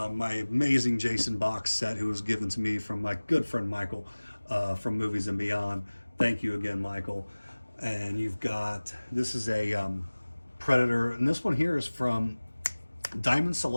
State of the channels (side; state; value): both; inverted; correlation -1.00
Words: amazing Jason box set, who was given to me from my good friend Michael from Movies and Beyond. Thank you again, Michael. And you've got, this is a Predator, and this one here is from Diamond